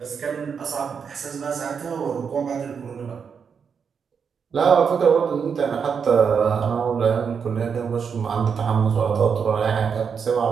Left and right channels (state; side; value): quieter; left; 6.5 dB